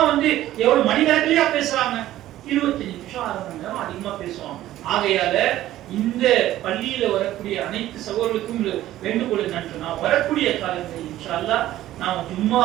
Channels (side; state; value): left; quieter; 14.1 dB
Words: வந்து எவ்வளவு மணிக்கணக்கிலேயே பேசுறாங்க, 25 நிமிஷம் 1/2 மணி நேரம் அதிகமா பேசுவாங்க. ஆகையால இந்த பள்ளியில வரக்கூடிய அனைத்து சகோதரர்களுக்கும் வேண்டுகோள் என்னன்னு சொன்னா, வரக்கூடிய காலங்களில் இன்ஷா அல்லாஹ் நாம